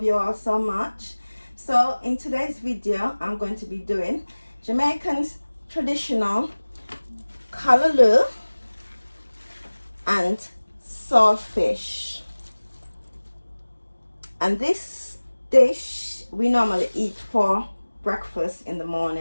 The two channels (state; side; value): inverted; both; correlation -1.00